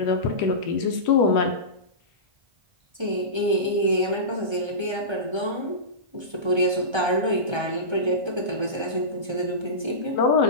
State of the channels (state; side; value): late; left; 1.3 ms